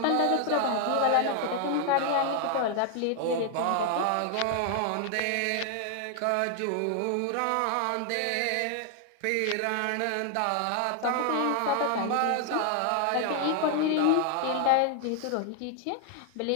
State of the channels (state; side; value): different; both; correlation 0.00